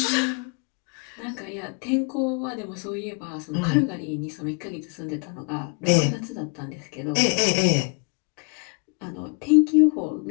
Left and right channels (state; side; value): quieter; right; 34.9 dB